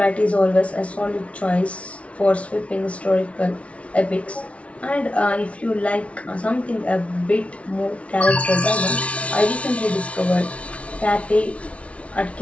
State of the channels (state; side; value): late; right; 0.063 ms